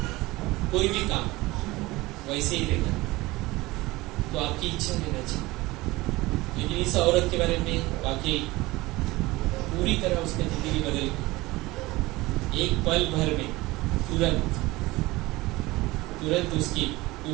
कोई भी काम वैसे ही रहेगा। तो आपकी इच्छा रहना चाहिए। लेकिन इस औरत के बारे में वाकई पूरी तरह उसकी जिंदगी बदल गई, एक पल भर में, तुरंत उसकी,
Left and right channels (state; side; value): quieter; left; 20.4 dB